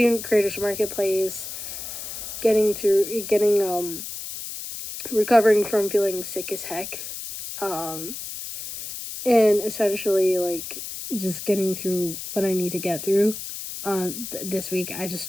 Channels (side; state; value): left; noise; hiss, 8 dB below the sound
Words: Creators Marketplace, recovering from feeling sick as heck, and essentially like just getting through what I need to get through. This week,